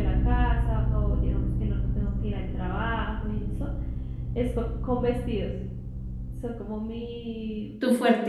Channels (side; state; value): both; identical; correlation 1.00